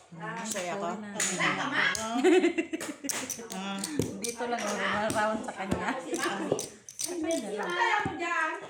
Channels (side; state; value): both; identical; correlation 1.00